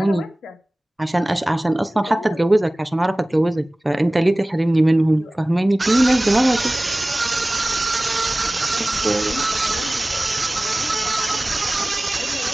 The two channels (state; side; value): normal; both; correlation 0.98